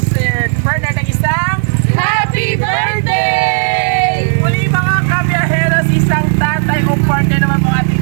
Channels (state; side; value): silent; left; digital silence